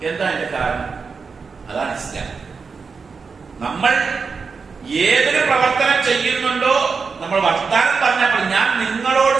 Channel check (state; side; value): quieter; left; 5.1 dB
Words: എന്താ അതിന്റെ കാരണം? അതാണ് ഇസ്ലാം. നമ്മൾ ഏതൊരു പ്രവർത്തനം ചെയ്യുന്നുണ്ടോ, നമ്മൾ വർത്താനം പറഞ്ഞപ്പോൾ ഞാൻ നിങ്ങളോട്